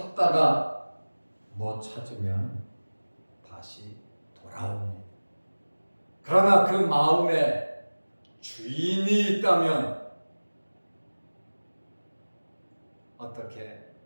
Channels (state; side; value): inverted; both; correlation -1.00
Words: 못 찾으면 다시 돌아옵니다. 그러나 그 마음에 주인이 있다면 어떻게